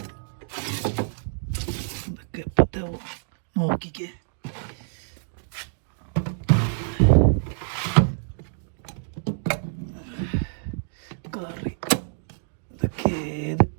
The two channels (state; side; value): silent; left; digital silence